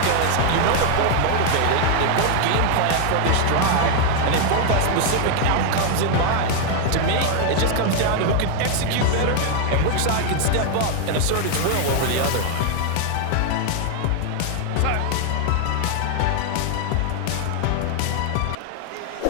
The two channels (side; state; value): both; different; correlation 0.00